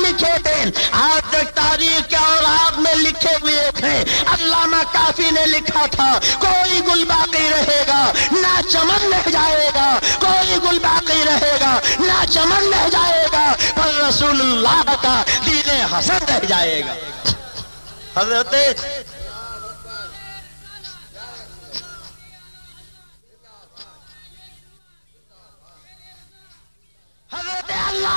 تھے آج تک تاریخ کے اوراق میں لکھے ہوئے تھے۔ علامہ کافی نے لکھا تھا، کوئی گل باقی رہے گا نہ چمن رہ جائے گا، کوئی گل باقی رہے گا نہ چمن رہ جائے گا، پر رسول اللہ کا دین حسن رہ جائے گا۔ حضرت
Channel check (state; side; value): inverted; both; correlation -1.00